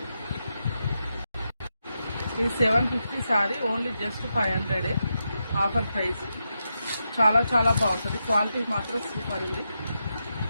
ఇది 750 sorry, only just 500 offer price. చాలా చాలా బాగుంటుంది, క్వాలిటీ మాత్రం సూపర్ ఉంది,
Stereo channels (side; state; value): both; inverted; correlation -0.86